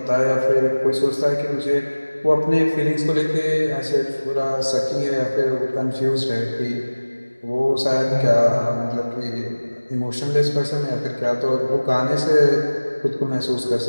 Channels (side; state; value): both; inverted; correlation -1.00